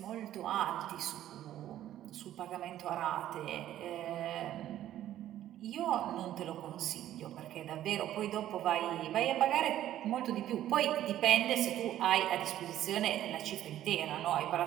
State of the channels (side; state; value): left; quieter; 12.5 dB